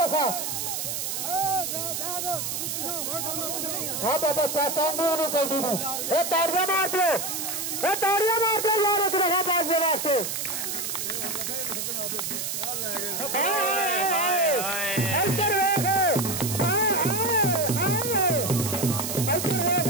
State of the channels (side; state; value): right; noise; hiss, 3 dB below the sound